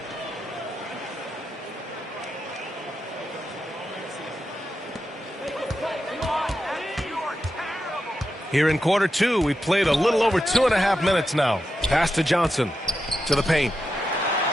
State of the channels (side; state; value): both; normal; correlation 0.88